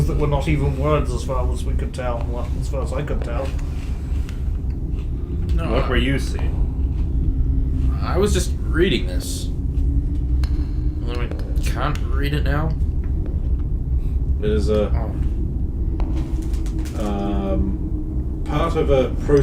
that were not even words as far as we could tell. Well, as far as I could tell. No. What were you seeing? I was just reading this. Although I can't read it now. It is a part of a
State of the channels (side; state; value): both; identical; correlation 1.00